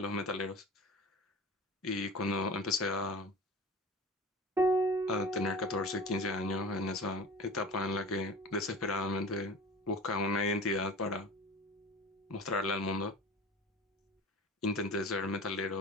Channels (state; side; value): normal; both; correlation 0.36